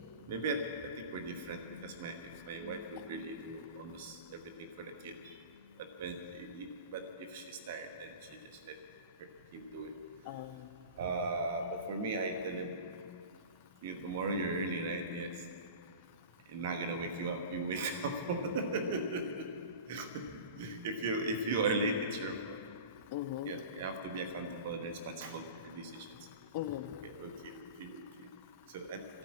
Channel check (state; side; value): inverted; both; correlation -0.35